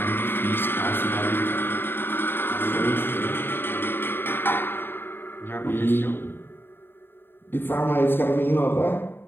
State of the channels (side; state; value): right; late; 0.10 ms